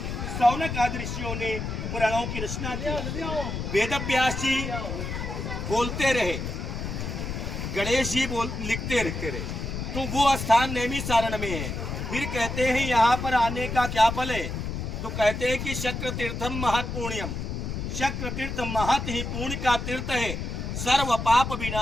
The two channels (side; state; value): left; noise; rumble, 4 dB below the sound